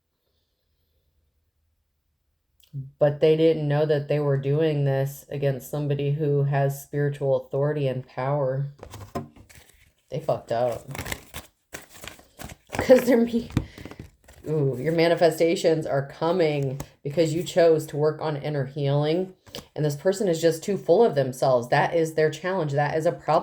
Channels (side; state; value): both; identical; correlation 1.00